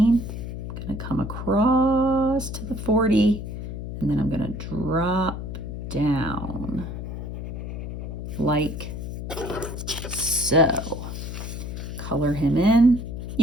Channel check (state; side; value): noise; left; hum, 6 dB below the sound